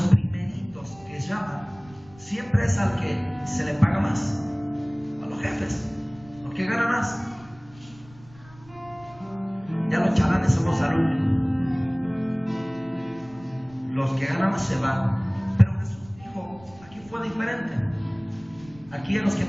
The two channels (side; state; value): right; noise; rumble, 24 dB below the sound